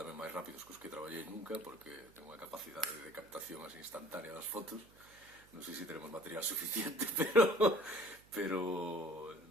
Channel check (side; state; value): right; noise; hum, 26 dB below the sound